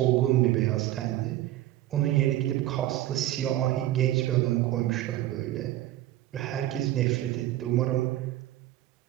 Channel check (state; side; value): quieter; left; 14.5 dB